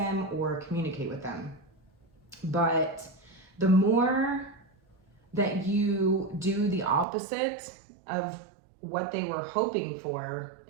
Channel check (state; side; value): drops out; left; at 7.1 s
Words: or communicate with them. But the more that you do the opposite of what they were hoping for,